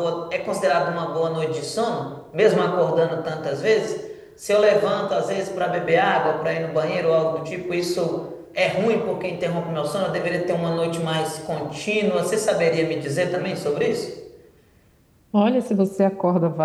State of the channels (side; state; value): both; identical; correlation 1.00